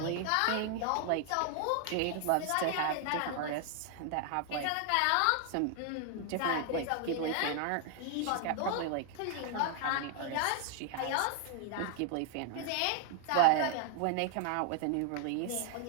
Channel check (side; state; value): both; different; correlation 0.00